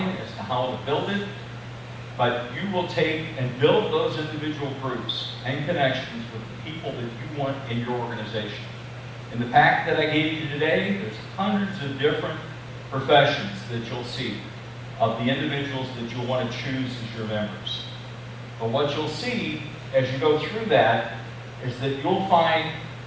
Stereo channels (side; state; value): both; identical; correlation 1.00